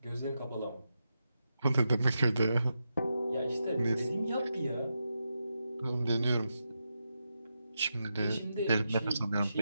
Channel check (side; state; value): both; inverted; correlation -0.87